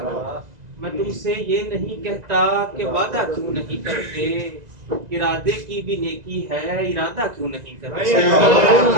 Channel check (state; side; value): late; left; 2.0 ms